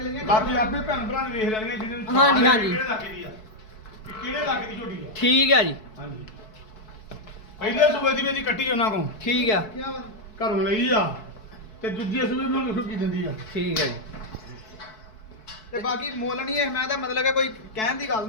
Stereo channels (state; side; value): late; right; 4.6 ms